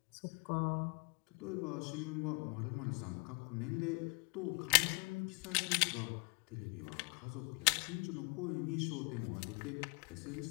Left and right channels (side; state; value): right; quieter; 32.6 dB